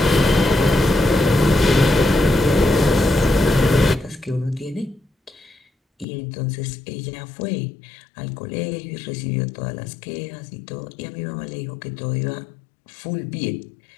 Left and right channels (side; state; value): right; drops out; at 6.1 s